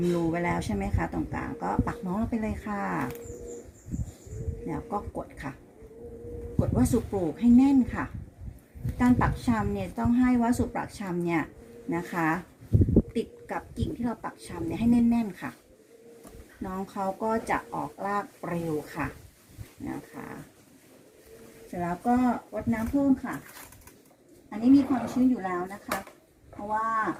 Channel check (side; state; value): both; identical; correlation 1.00